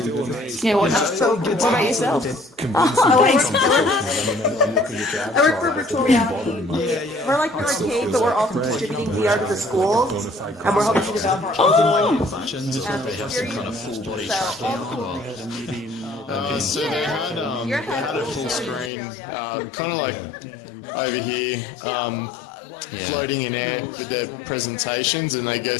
whatnot. So, what about yourself? I work for virtual reality. We're like an arcade, but we're also distributing VR to the schools, and we're hoping to develop our own experience. So they had a full screen, kind of like over here, floating in air with their presentations, and they go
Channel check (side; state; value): right; drops out; at 18.9 s